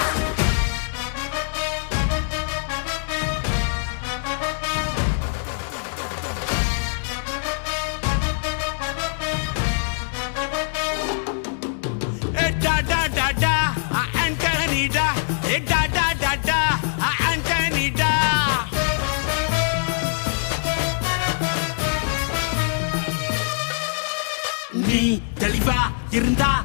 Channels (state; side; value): silent; right; digital silence